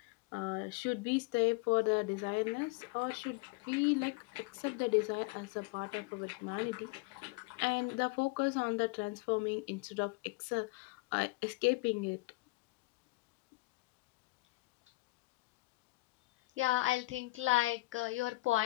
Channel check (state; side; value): quieter; right; 22.4 dB